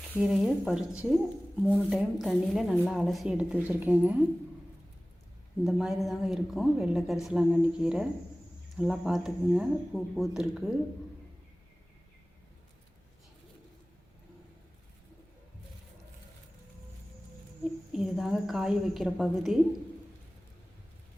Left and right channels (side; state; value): both; normal; correlation 0.98